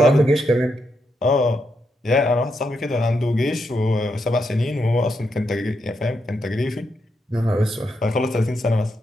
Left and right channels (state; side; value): normal; both; correlation 0.81